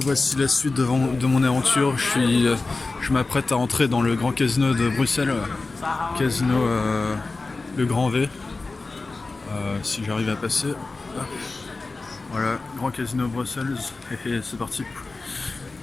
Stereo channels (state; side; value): quieter; right; 3.6 dB